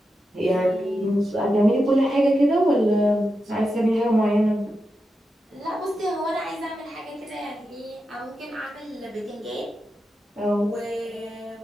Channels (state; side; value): normal; both; correlation 0.88